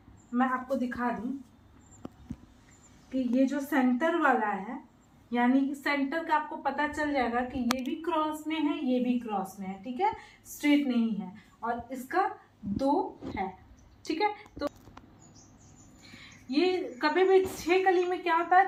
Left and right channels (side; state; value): both; identical; correlation 1.00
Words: मैं आपको दिखा दूं कि ये जो सेंटर वाला है, यानी कि सेंटर का आपको पता चल जाएगा कि ये भी क्रॉस में है, ये भी क्रॉस में है, ठीक है, स्ट्रेट नहीं है। और इसका 2 है, ठीक है। तो ये कभी भी 6 कली में क्या होता